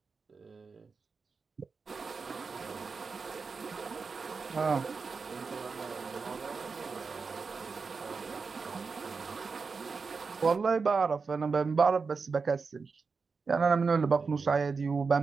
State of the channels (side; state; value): left; quieter; 4.8 dB